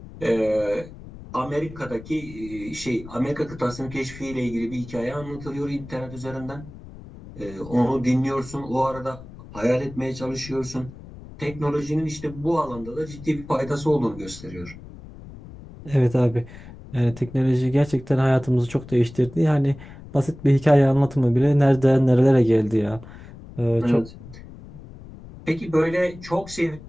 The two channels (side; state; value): left; noise; rumble, 16 dB below the sound